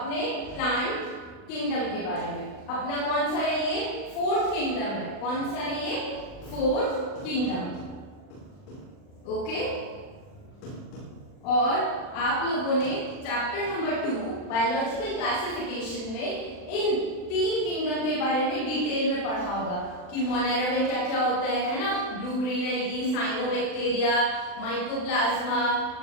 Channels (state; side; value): late; right; 39 ms